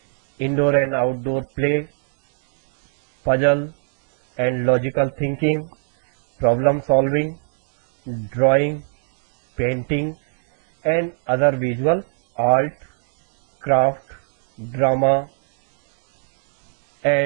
indoor and outdoor play, puzzle and logical thinking, problem solving, drawing, painting and other visual art, craft, drama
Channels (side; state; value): left; silent; 66 dB below the other